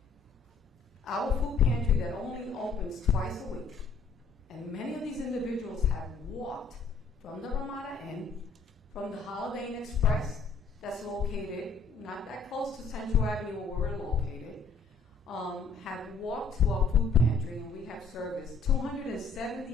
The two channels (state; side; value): quieter; right; 4.3 dB